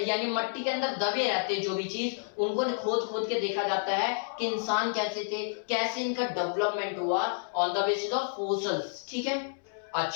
यानी मट्टी के अंदर दबे रहते हैं जो भी चीज, उनको खोद के देखा जाता है कि इंसान कैसे थे, कैसे इनका डेवलपमेंट हुआ, on the basis of fossils, ठीक है।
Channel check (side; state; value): right; silent; 58 dB below the other